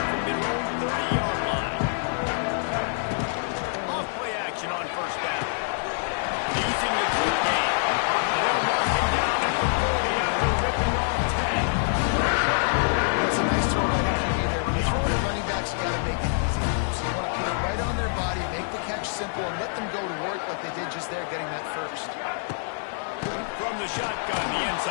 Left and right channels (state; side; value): silent; right; 61 dB below the other